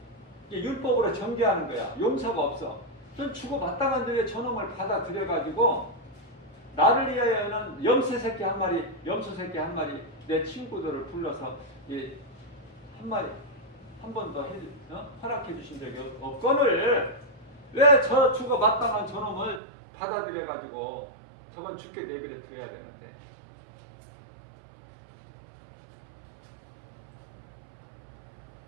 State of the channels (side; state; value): left; drops out; at 19.6 s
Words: 율법으로 정죄하는 거야. 용서가 없어. 전 죽어 마땅한데 왜 저놈을 받아들여가지고 나를 위하여는 염소 새끼 한 마리 내 친구들을 불러서 한 마리 한 번 더 허락해 주신 적이 없거늘 왜 저 죽어 마땅한 저놈을 받아들여가지고 저건 죽게 내버려 둬야 되는데.